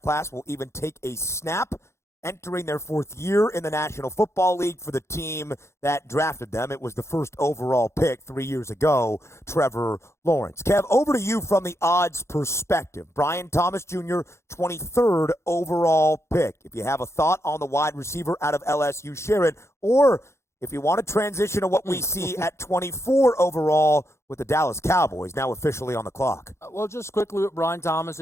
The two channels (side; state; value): right; late; 0.13 ms